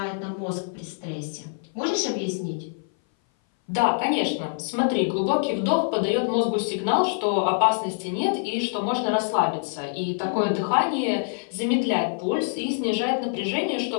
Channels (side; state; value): right; silent; 58 dB below the other